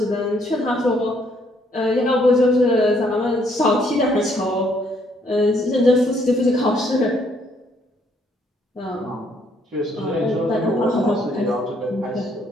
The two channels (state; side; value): normal; both; correlation 0.68